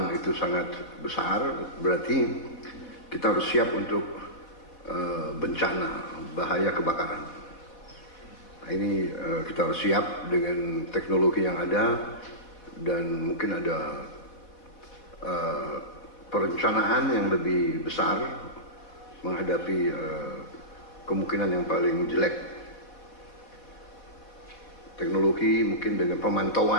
itu sangat besar, berarti kita harus siap untuk bencana, bahaya kebakaran. Nah, ini kita harus siap dengan teknologi yang ada, dan mungkin ada perencanaan yang lebih besar menghadapi kemungkinan yang paling jelek. Teknologi mungkin dengan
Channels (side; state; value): right; late; 4.2 ms